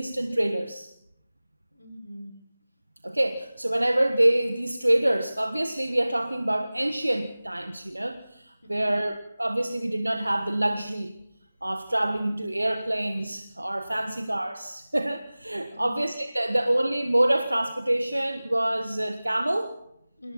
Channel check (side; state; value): both; inverted; correlation -0.98